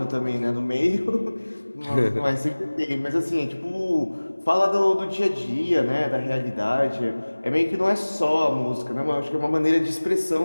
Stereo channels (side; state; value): both; inverted; correlation -1.00